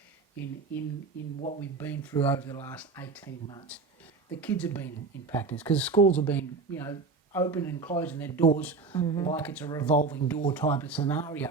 in what we've been through over the last 18 months. The kids have been impacted because schools have been, open and closing their doors like it's a revolving door type of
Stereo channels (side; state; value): left; quieter; 4.3 dB